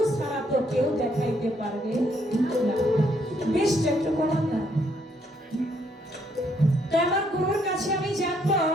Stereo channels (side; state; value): both; normal; correlation 0.71